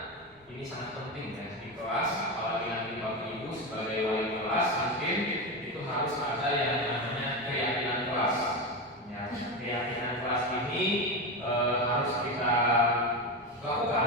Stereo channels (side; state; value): both; normal; correlation 0.17